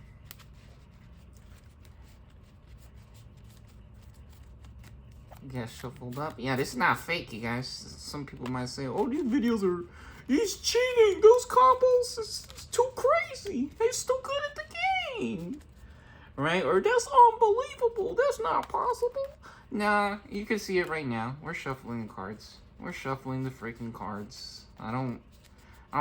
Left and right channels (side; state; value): both; identical; correlation 1.00